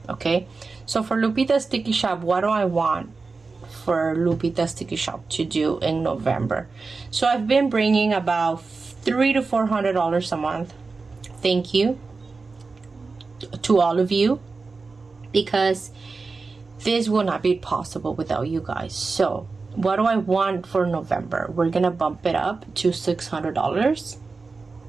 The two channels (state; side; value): quieter; left; 4.2 dB